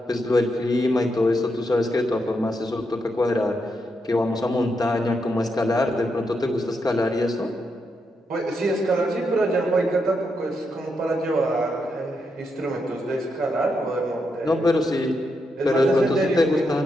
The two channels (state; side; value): normal; both; correlation 0.82